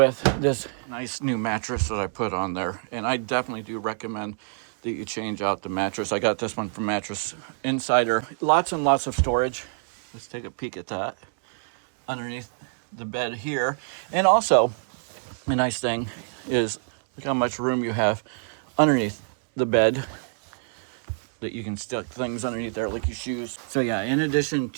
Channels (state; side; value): silent; left; digital silence